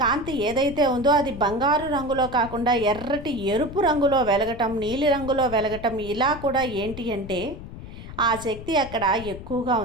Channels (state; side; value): noise; left; rumble, 12 dB below the sound